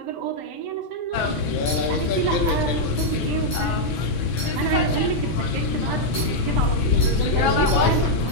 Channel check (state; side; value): late; right; 6.1 ms